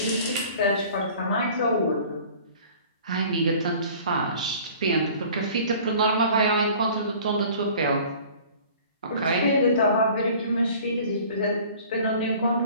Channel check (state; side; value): inverted; both; correlation -0.47